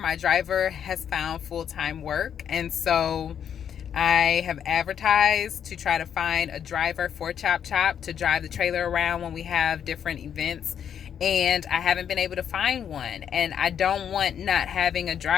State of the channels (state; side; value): quieter; right; 8.6 dB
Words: driver has found full-time work, and so I have advertised to try to find a driver for Chop Chop to drive the trailer around when we have different events. And I haven't been able to find one. And I don't want not having a